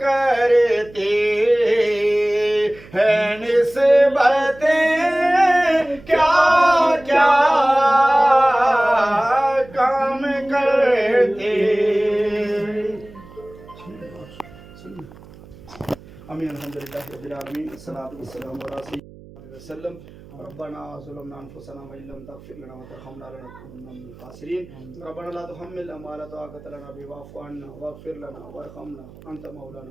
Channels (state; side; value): noise; right; hum, 20 dB below the sound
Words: ہیں نسبتیں کیا کیا کام کرتے امین الحمدللہ رب العالمین الصلاۃ والسلام علی سیدنا وسلم ربنا ظلمنا انفسنا وان لم تغفر لنا وترحمنا لنكونن من الخاسرين ربنا لا تحملنا ما لا طاقة لنا به واعف عنا واغفر لنا وارحمنا انت